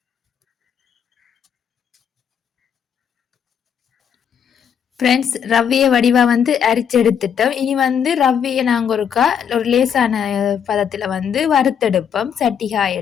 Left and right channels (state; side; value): quieter; right; 7.9 dB